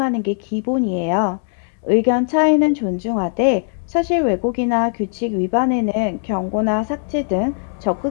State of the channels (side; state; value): right; silent; 66 dB below the other